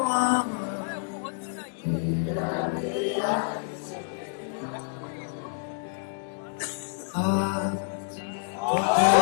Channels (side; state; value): right; silent; 58 dB below the other